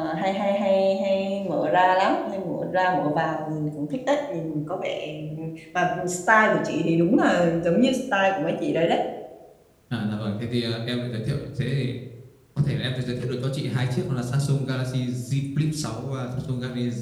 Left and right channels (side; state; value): both; identical; correlation 1.00